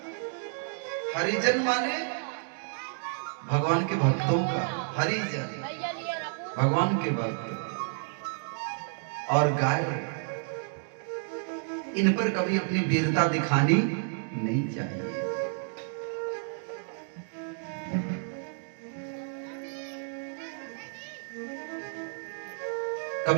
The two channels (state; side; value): silent; left; 58 dB below the other